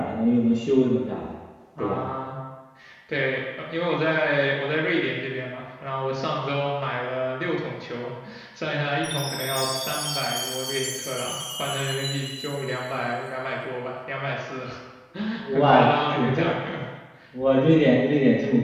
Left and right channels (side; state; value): both; identical; correlation 1.00